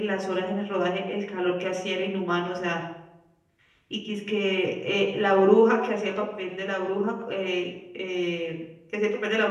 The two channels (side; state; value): both; identical; correlation 1.00